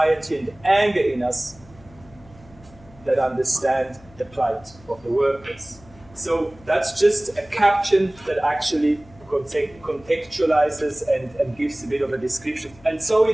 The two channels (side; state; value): left; noise; hum, 24 dB below the sound